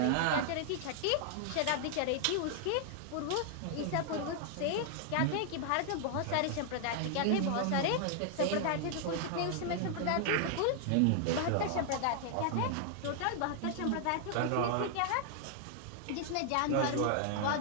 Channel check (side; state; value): both; different; correlation 0.00